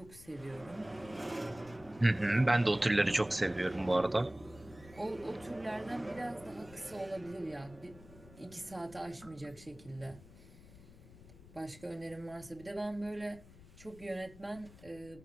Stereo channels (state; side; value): noise; left; rumble, 20 dB below the sound